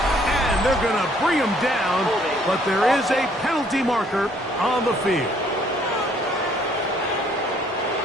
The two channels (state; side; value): normal; both; correlation 0.63